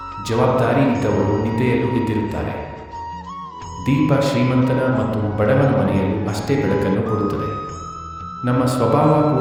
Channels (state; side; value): identical; both; correlation 1.00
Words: ಜವಾಬ್ದಾರಿ ಇದ್ದವರು ನಿದ್ದೆಯಲ್ಲೂ ಎದ್ದಿರುತ್ತಾರೆ. ದೀಪ ಶ್ರೀಮಂತನ ಮತ್ತು ಬಡವನ ಮನೆಯಲ್ಲೂ ಅಷ್ಟೇ ಬೆಳಕನ್ನು ಕೊಡುತ್ತದೆ. ನಮ್ಮ ಸ್ವಭಾವ